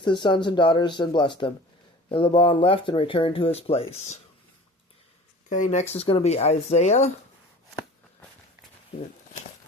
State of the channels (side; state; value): both; normal; correlation 0.42